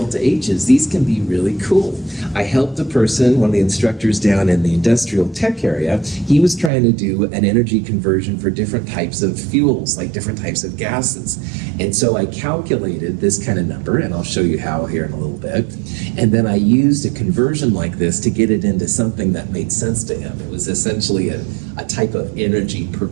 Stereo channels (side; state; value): left; drops out; at 6.7 s